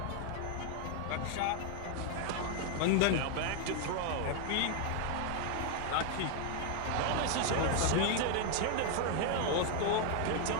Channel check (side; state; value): both; different; correlation 0.00